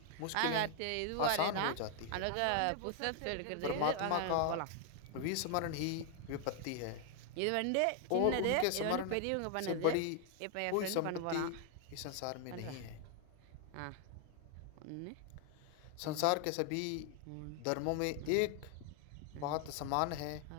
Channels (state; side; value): different; both; correlation 0.00